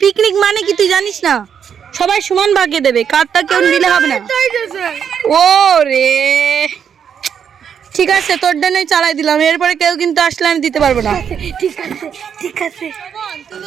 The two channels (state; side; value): quieter; left; 7.8 dB